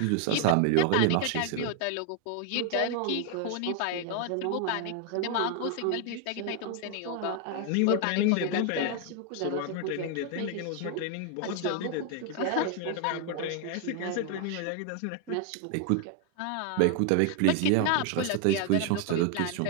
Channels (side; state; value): both; different; correlation 0.01